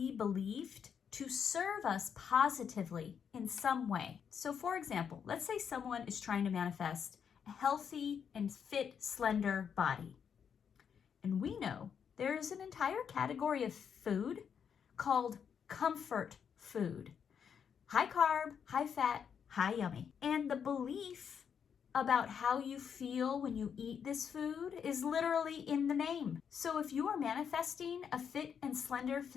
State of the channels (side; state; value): right; quieter; 7.4 dB